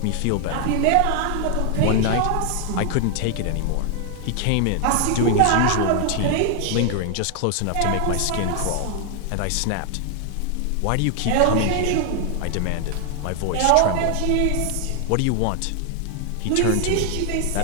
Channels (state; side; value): different; both; correlation 0.00